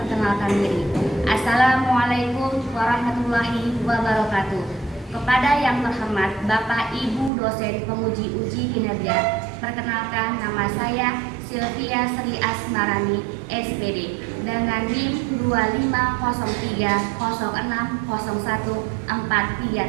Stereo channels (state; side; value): drops out; left; at 7.3 s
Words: diri. Assalamualaikum warahmatullahi wabarakatuh. Kepada yang terhormat Bapak Ibu dosen penguji uji kinerja, perkenalkan nama saya Sylvia Sri Asmarani, SPD, dengan NIM